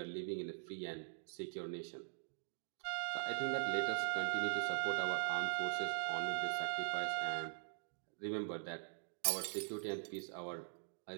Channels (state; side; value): silent; left; digital silence